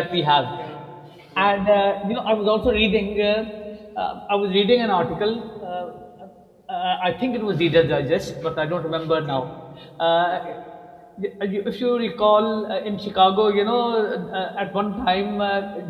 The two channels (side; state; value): both; identical; correlation 1.00